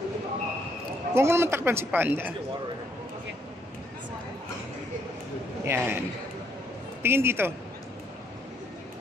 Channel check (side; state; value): both; normal; correlation 0.70